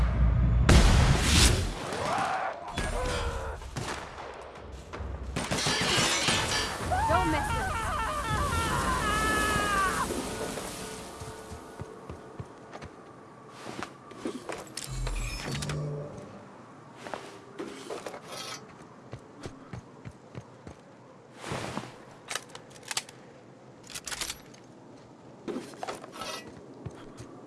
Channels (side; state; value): both; identical; correlation 1.00